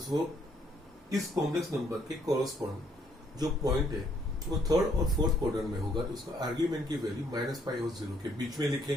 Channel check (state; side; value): normal; both; correlation 0.68